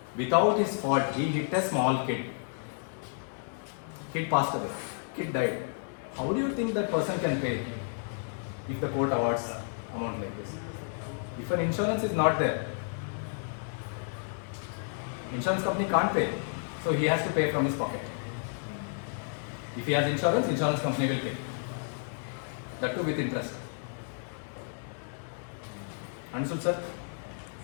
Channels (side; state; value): right; silent; digital silence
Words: Without his fault, he hit a small kid. Kid passed away. Kid died. How do you think that person can pay if the court awards amount like this? If an insurance is not there, insurance company can't pay, so he has to pay from his pocket. If he has insurance, insurance company will pay. That too with interest. Understood, sir?